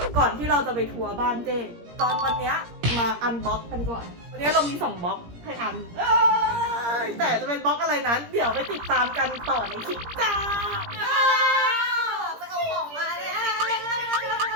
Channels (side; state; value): left; late; 17 ms